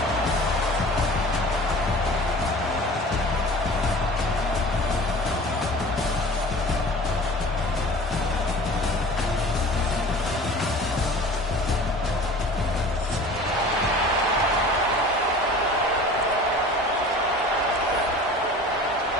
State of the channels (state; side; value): normal; both; correlation 0.42